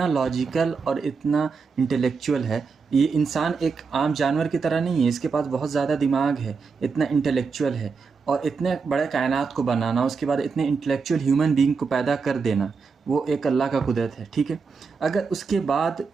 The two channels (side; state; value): left; quieter; 5.0 dB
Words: لاجیکل اور اتنا انٹلیکچوئل ہے۔ یہ انسان ایک عام جانور کی طرح نہیں ہے، اس کے پاس بہت زیادہ دماغ ہے، اتنا انٹلیکچوئل ہے، اور اتنے بڑے کائنات کو بنانا، اس کے بعد اتنے انٹلیکچوئل ہیومن بینگ کو پیدا کر دینا، وہ ایک اللہ کا قدرت ہے، ٹھیک ہے۔ اگر اس کے بعد